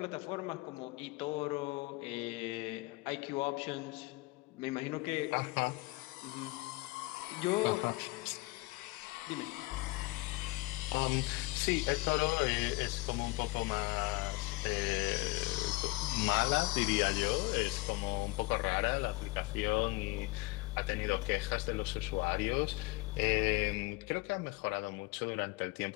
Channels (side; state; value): right; quieter; 22.6 dB